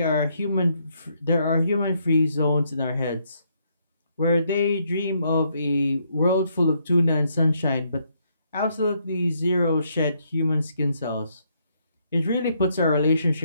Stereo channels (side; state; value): both; inverted; correlation -0.73